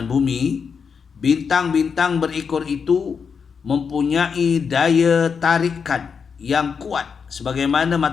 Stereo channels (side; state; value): right; quieter; 6.1 dB